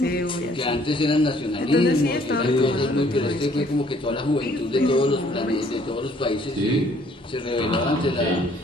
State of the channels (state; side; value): normal; both; correlation 0.61